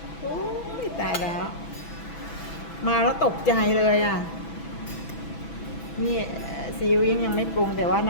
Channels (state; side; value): late; right; 6.1 ms